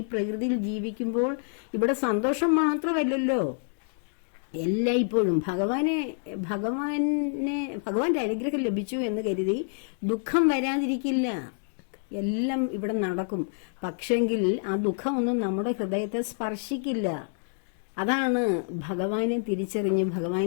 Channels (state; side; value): silent; right; digital silence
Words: പ്രകൃതിയിൽ ജീവിക്കുമ്പോൾ ഇവിടെ സന്തോഷം മാത്രമല്ലല്ലോ, എല്ലായ്പ്പോഴും ഭഗവാന്റെ അനുഗ്രഹം ലഭിച്ചു എന്ന് കരുതി ദുഃഖം വരാതിരിക്കില്ല. എല്ലാം ഇവിടെ നടക്കും. പക്ഷെങ്കിൽ ആ ദുഃഖമൊന്നും നമ്മുടെ ഹൃദയത്തെ സ്പർശിക്കില്ല. അതാണ് ഭഗവാനെ തിരിച്ചറിഞ്ഞ്